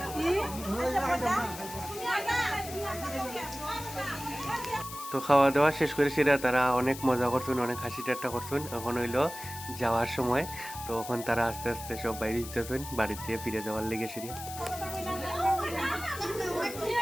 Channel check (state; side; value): noise; left; hiss, 12 dB below the sound